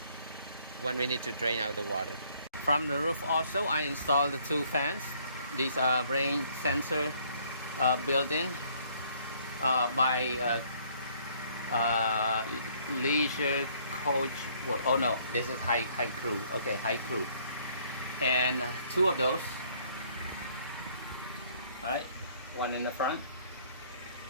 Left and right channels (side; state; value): both; inverted; correlation -0.63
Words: when we need to drain out the water. From the roof also, I installed the 2 fans. These are rain sensor built-in by Leisure Coach. Oh no, this is High Crew. Okay, High Crew, and 2 of those. All right, one in the front,